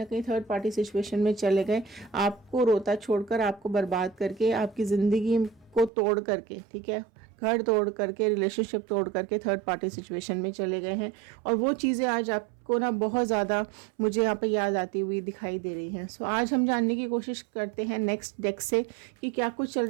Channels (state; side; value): drops out; left; at 5.9 s